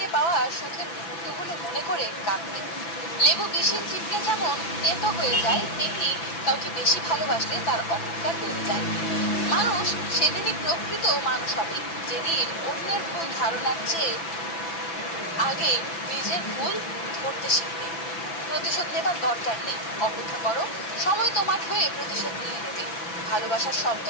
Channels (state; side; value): late; right; 6.0 ms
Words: পাওয়া সুখের মুহূর্তগুলো মনে করে কাঁদবে। লেবু বেশি চিপলে যেমন তেতো হয়ে যায়, তেমনি কাউকে বেশি ভালোবাসলে তার অহংকার বেড়ে যায়। মানুষ সেদিনই প্রকৃত মানুষ হবে, যেদিন অন্যের ভুল ধারণার চেয়ে আগে নিজের ভুল ধরতে শিখবে। প্রতিশোধ নেবার দরকার নেই, অপেক্ষা করো, সময় তোমার হয়ে প্রতিশোধ নিয়ে নেবে। ভালোবাসার